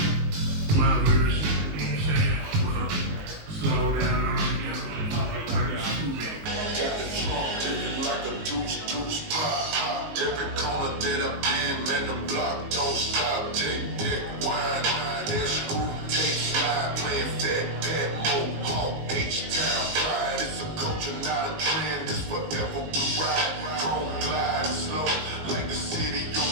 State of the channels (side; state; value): left; late; 19 ms